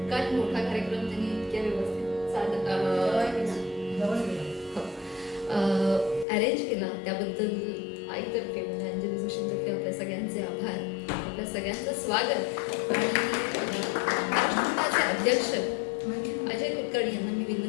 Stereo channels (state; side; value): drops out; right; at 6.2 s